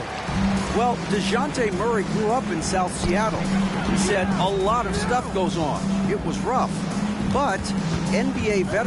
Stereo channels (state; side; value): identical; both; correlation 1.00